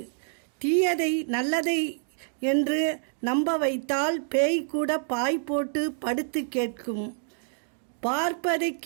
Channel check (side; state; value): left; silent; digital silence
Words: தீயதை நல்லதை என்று நம்ப வைத்தால் பேய் கூட பாய் போட்டு படுத்து கேட்கும். பார்ப்பதை